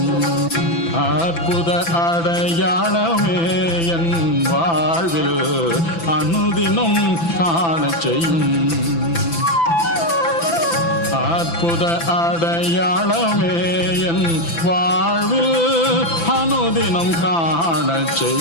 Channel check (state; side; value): late; right; 6.0 ms